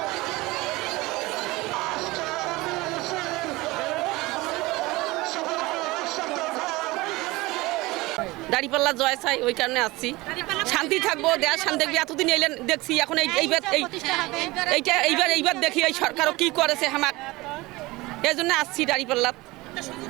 দাঁড়িপাল্লা জয় চাই, ওই কারণে আসছি। শান্তি থাকবো, দেশ শান্তি থাকবে। এতদিন এলেন দেখছি, এখন এইবার দেখি এই সরকারও কি করেছে আমার, এই জন্য আসছি দাঁড়িপাল্লা।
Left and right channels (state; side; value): quieter; left; 21.1 dB